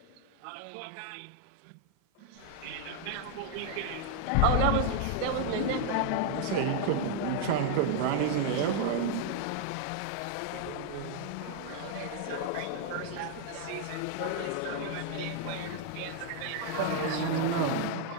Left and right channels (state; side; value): different; both; correlation 0.00